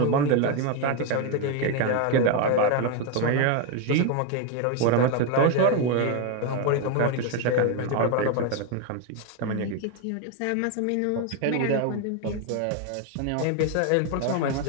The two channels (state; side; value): different; both; correlation 0.02